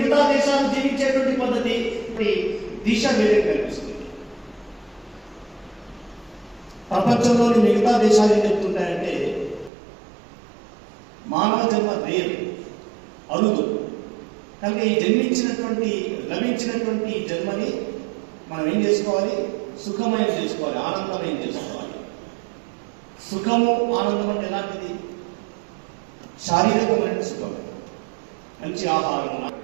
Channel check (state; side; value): drops out; left; at 9.7 s